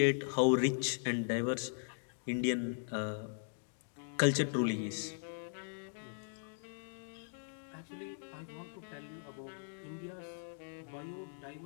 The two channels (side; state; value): right; silent; digital silence